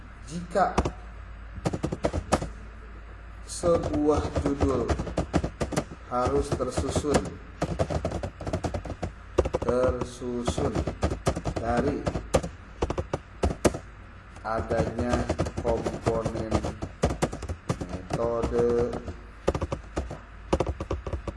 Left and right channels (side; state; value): both; identical; correlation 1.00